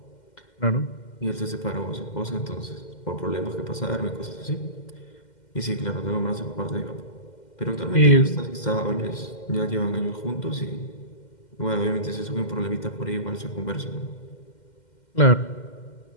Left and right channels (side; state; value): right; late; 2.1 ms